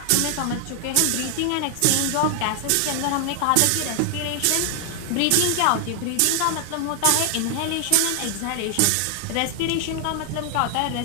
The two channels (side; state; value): both; different; correlation 0.00